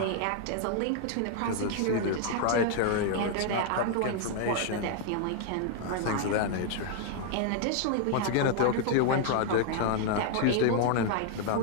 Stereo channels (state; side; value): different; both; correlation 0.00